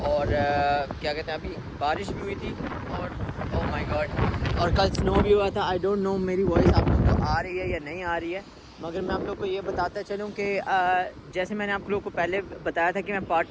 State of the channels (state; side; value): identical; both; correlation 1.00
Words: और क्या कहते हैं, अभी बारिश भी हुई थी और ओह माय गॉड, और कल स्नो भी हुआ था। आई डोंट नो मेरी वॉइस आप लोग को आ रही है या नहीं आ रही है, मगर मैं आप लोग को ये बताता चलूँ कि जैसे मैंने आप लोग को पहले बताया था कि मैं पार्ट